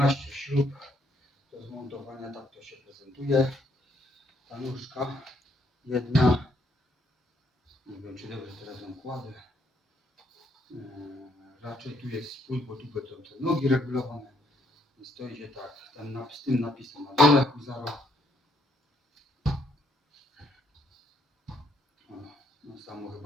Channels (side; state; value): both; normal; correlation 0.71